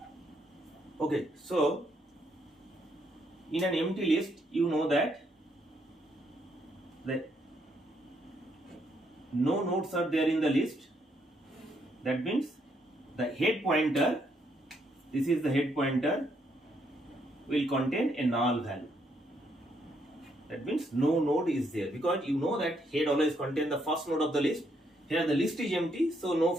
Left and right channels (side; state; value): both; normal; correlation 0.74